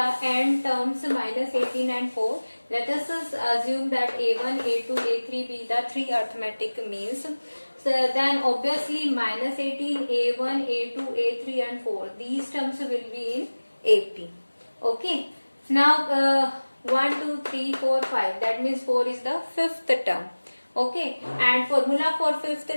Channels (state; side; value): inverted; both; correlation -1.00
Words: n terms minus 18 and 4. Let us assume that a1, a2, a3 be the three arithmetic means. So then obviously minus 18, a1, a2, a3 and 4. These terms will be in AP. Okay. Now 1, 2, 3, 4, 5. That means 4 is the fifth term. Okay, and formula for fifth